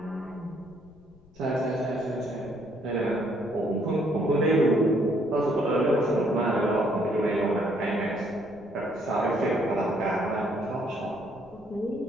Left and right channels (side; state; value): left; noise; rumble, 27 dB below the sound